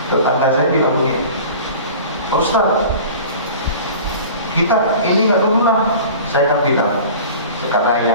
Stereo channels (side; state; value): both; inverted; correlation -0.40